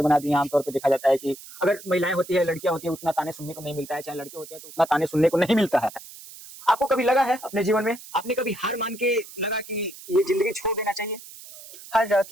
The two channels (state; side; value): noise; right; hiss, 17 dB below the sound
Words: बना दिए। आमतौर पर देखा जाता है कि अगर महिलाएं होती है, लड़कियां होती है, उतना ताने सुनने को नहीं मिलता है, चाहे लड़के होते हैं तो उतना ताने सुनने को नहीं मिलता है। आपको कभी लगा है अपने जीवन में, आपने कभी हार मान के लगा कि ये जिंदगी छोड़ देना चाहिए? हर